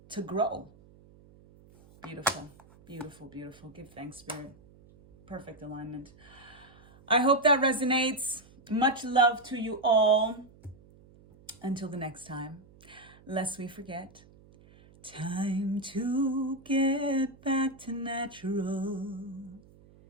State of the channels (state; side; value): noise; right; hum, 25 dB below the sound